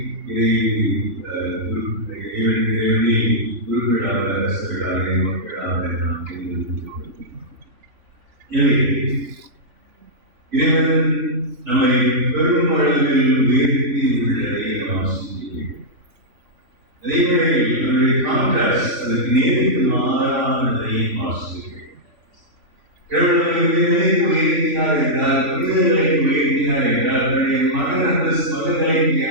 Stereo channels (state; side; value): late; left; 3.3 ms